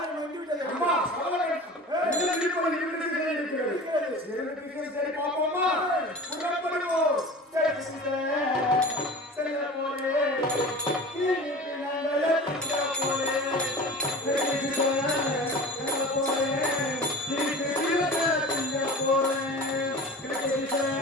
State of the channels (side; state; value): both; normal; correlation 0.36